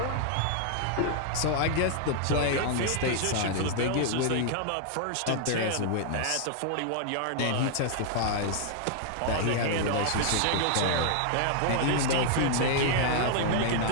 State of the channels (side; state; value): both; different; correlation -0.01